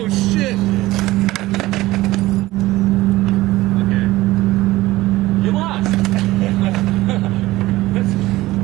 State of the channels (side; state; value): left; quieter; 17.9 dB